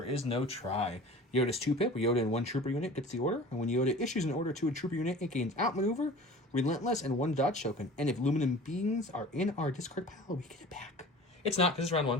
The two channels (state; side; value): normal; both; correlation 0.41